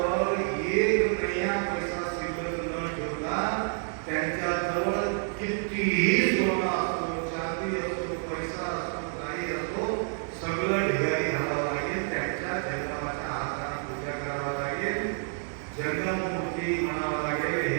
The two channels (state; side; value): silent; left; 59 dB below the other